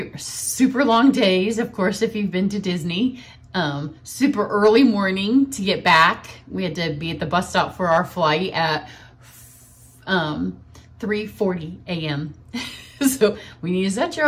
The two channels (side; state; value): both; identical; correlation 1.00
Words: were super long days, of course, if you've been to Disney. Super early morning to get back. We had to be at the bus stop for our flight at 3:40 a.m. So when you set your